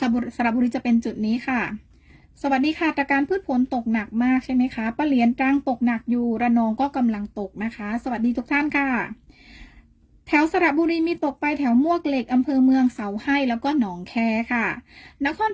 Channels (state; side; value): identical; both; correlation 1.00